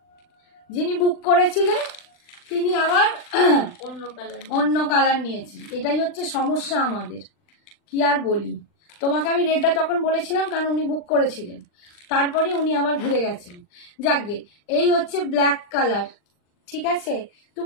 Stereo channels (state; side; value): late; right; 39 ms